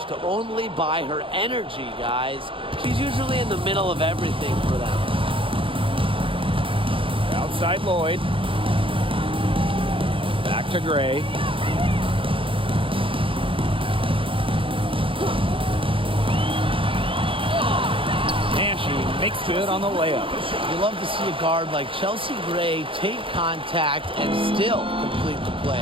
only by her energy, guys. She's usually in the middle of everything for them. Outside Lloyd. Back to Gray. Makes good on the layup. You love to see a guard like Chelsea Gray take contact and still complete the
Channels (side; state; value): left; late; 0.25 ms